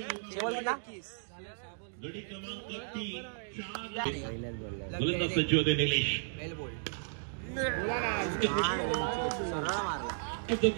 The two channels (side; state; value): left; silent; digital silence